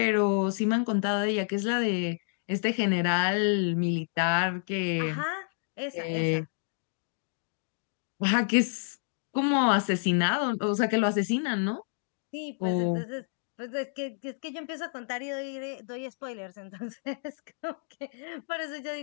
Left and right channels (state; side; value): silent; right; digital silence